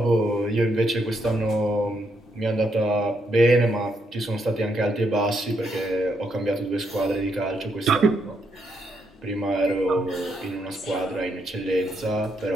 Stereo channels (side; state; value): both; normal; correlation 0.77